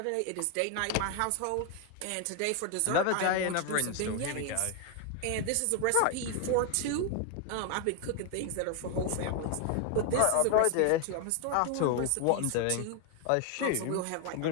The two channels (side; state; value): both; different; correlation 0.01